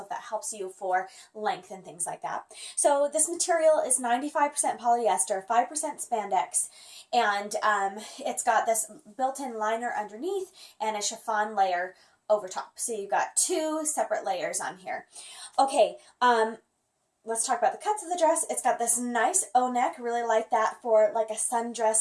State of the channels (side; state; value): both; identical; correlation 1.00